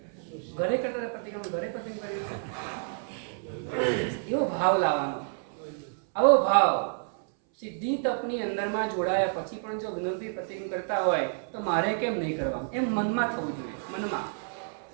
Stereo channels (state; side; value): silent; left; 58 dB below the other